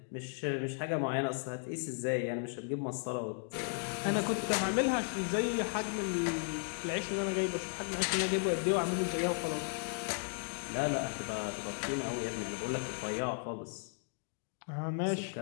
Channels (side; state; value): right; silent; 54 dB below the other